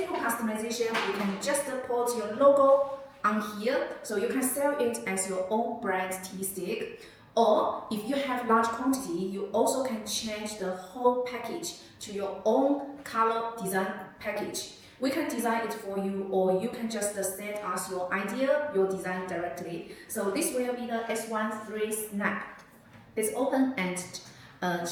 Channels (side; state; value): both; identical; correlation 1.00